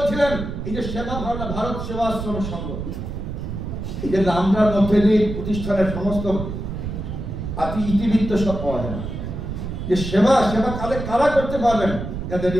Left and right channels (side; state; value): right; noise; rumble, 6 dB below the sound